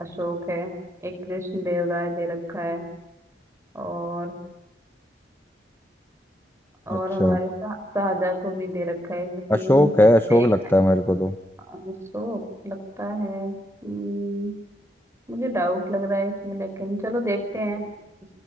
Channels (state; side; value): normal; both; correlation 0.78